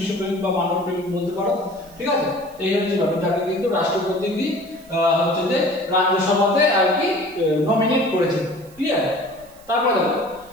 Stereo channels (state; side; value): noise; right; hiss, 26 dB below the sound